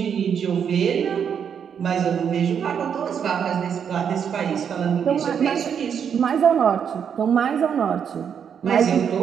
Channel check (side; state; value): left; quieter; 7.7 dB